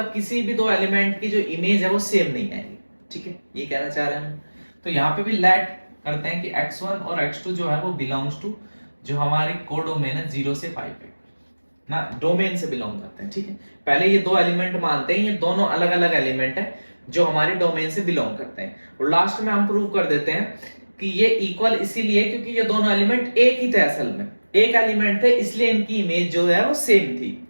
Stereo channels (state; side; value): inverted; both; correlation -1.00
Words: किसी भी दो एलिमेंट की जो इमेज है वो सेम नहीं आएगी, ठीक है, ये कहना चाह रहे हैं। तो यहाँ पे भी लेट करते हैं कि x1 और x2 जो है वो बिलोंग्स टू जो हमारी कोडोमेन है 0 से π पे ना, डोमेन से बिलोंग करते हैं, ठीक है। पहले ये दो एलिमेंट मानते हैं, ये दोनों अलग अलग एलिमेंट है जो हमारे डोमेन से बिलोंग करते हैं, और लास्ट में हम प्रूव कर देते हैं कि ये इक्वल इसीलिए क्योंकि ये दोनों एलिमेंट एक ही थे, असल में एक एलिमेंट थे, इसलिए इनकी इमेज जो है वो सेम थी,